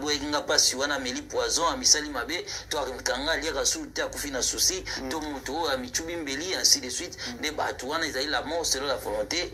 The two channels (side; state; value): both; identical; correlation 1.00